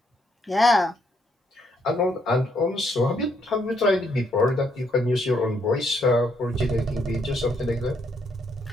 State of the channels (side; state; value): both; normal; correlation 0.72